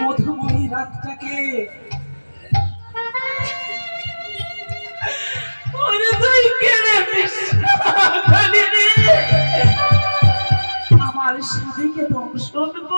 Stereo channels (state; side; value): inverted; both; correlation -1.00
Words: মধুময়ী রাতটাকে। ওরে তুই কেনে কালী রে, আমার স্বামীকে দংশন